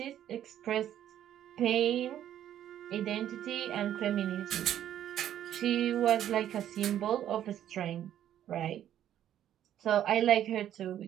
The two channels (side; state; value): left; quieter; 11.1 dB